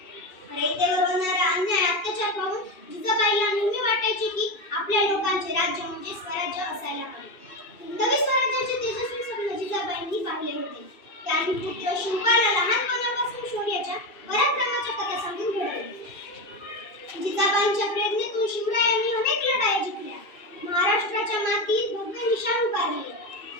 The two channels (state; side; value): late; right; 2.6 ms